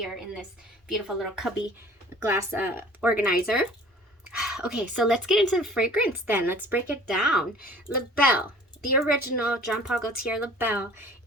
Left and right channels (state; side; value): normal; both; correlation 0.48